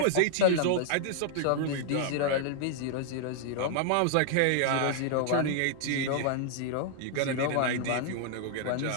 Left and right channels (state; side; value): different; both; correlation 0.00